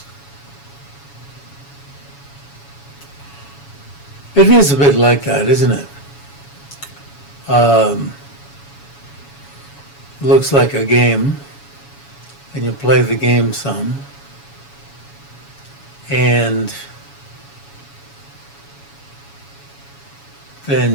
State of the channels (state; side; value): late; right; 7.1 ms